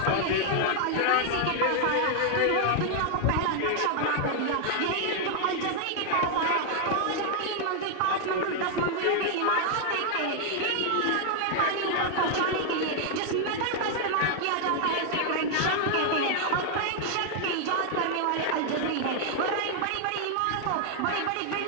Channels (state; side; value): different; both; correlation 0.00